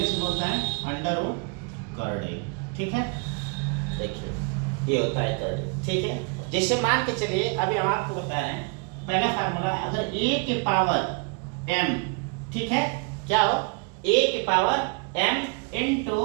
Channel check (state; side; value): quieter; left; 35.2 dB